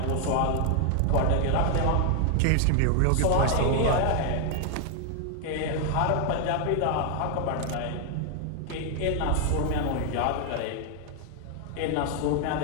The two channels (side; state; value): both; different; correlation 0.00